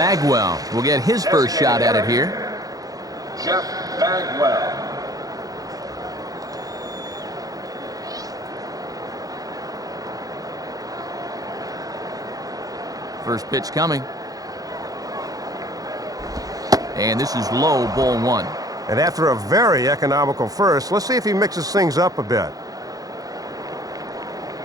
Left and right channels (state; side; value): late; left; 0.18 ms